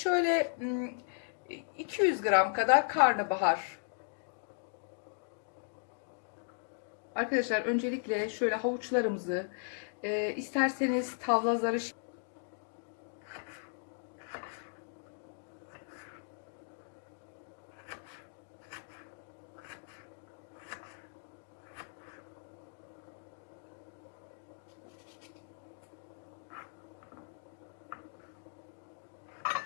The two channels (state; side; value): silent; right; digital silence